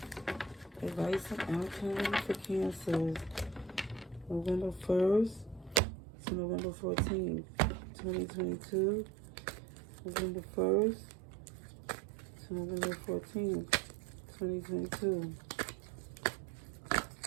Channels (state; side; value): drops out; left; at 5.8 s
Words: Advice and outcome for Cancers. November 1st to November 14th, 2022. November 1st to November 14th, 2022.